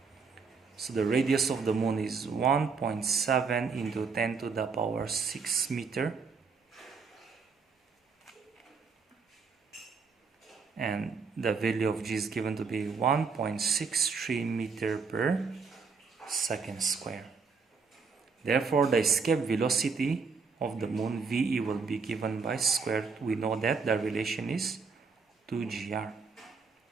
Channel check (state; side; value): quieter; left; 5.1 dB